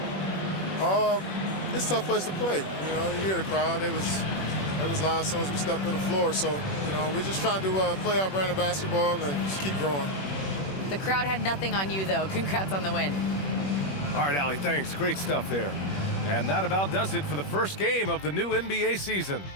It's a tough place to play. You know, you hear the crowd. It was loud as soon as we stepped on the floor. So, you know, we're just trying to play our brand of basketball and just keep growing. The crowd had nothing on you, though. Congrats on the win. All right, Allie, thanks. Great stuff there. And that about does it for the first game of the new NBA season.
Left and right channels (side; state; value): right; late; 21 ms